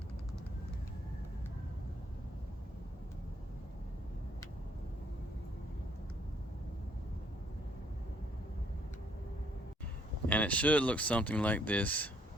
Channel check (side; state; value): both; normal; correlation 0.67